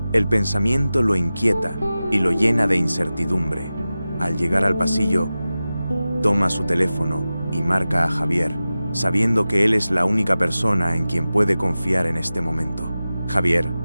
El pensamiento lo inquieta y lo llena de incertidumbre. Al llegar al pasillo, toma su teléfono y marca a Javier, sabiendo que él es la única persona en quien puede confiar en este momento. Javier,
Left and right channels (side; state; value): both; inverted; correlation -0.95